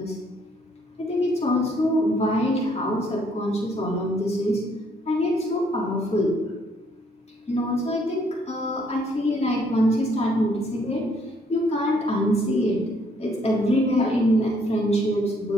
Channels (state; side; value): normal; both; correlation 0.67